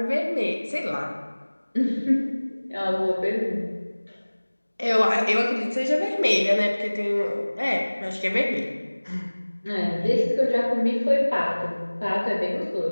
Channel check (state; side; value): inverted; both; correlation -1.00